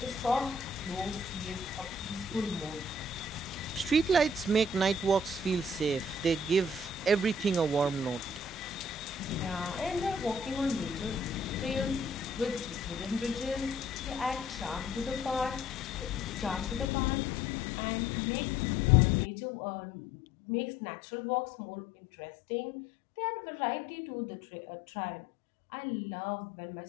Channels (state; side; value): drops out; right; at 16.9 s